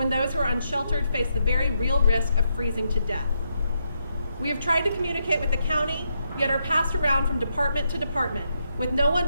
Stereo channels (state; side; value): inverted; both; correlation -0.81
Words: those who are unsheltered face the very real risk of freezing to death. We have tried to communicate with the county, yet are passed around from department to department, with no